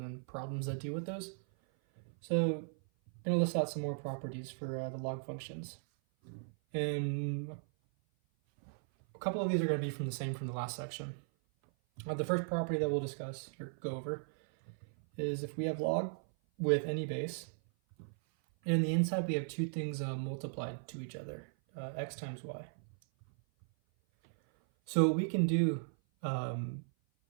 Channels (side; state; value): left; silent; 53 dB below the other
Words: then problems that deal with those. So I'm going to list out some more properties for the log functions. And a couple of these are going to be from the last section. The first property that we'll discuss or go over is if we have log with any base, and in the inside we have two things multiplied to each other, x times y. So what we can do